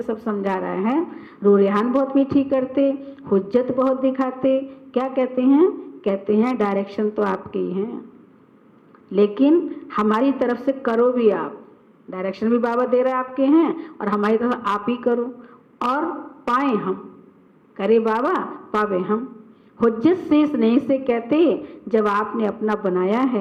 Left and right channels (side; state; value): both; identical; correlation 1.00